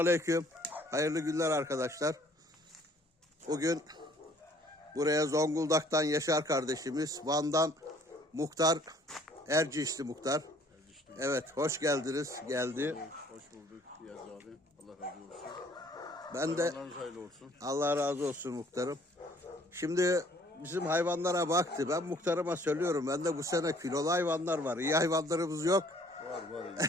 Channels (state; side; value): normal; both; correlation 0.58